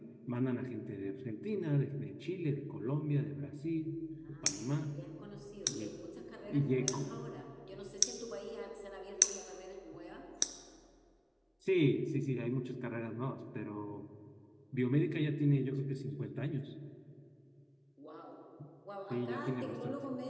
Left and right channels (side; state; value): both; identical; correlation 1.00